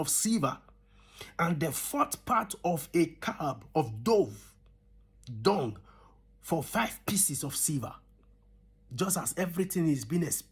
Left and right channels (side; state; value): both; identical; correlation 1.00